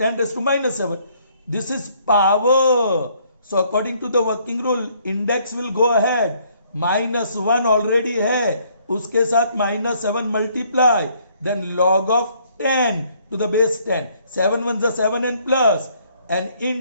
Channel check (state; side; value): inverted; both; correlation -0.65